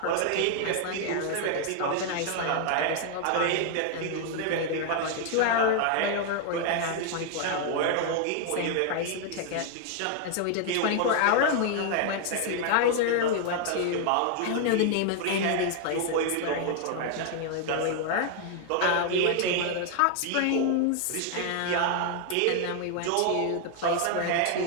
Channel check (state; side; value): different; both; correlation 0.00